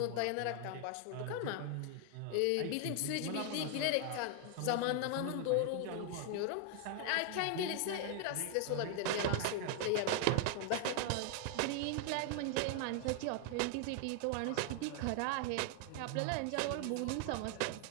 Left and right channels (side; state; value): both; different; correlation 0.00